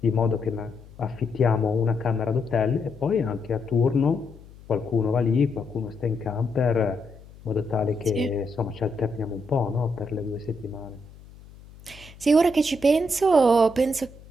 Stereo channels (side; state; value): left; noise; hum, 21 dB below the sound